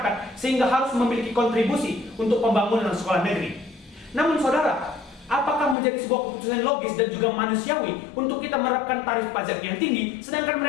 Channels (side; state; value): right; drops out; at 5.8 s